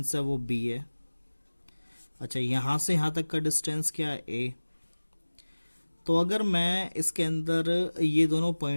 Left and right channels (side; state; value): both; inverted; correlation -1.00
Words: है वो b है। अच्छा, यहाँ से यहाँ तक का डिस्टेंस क्या है? a। तो अगर मैं इसके अंदर ये दोनों